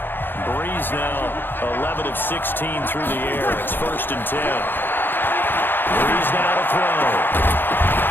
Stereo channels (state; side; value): late; right; 0.098 ms